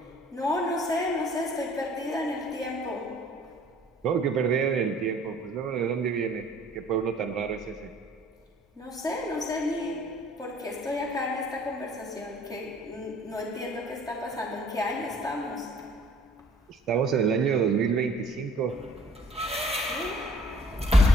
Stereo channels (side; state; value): both; normal; correlation 0.55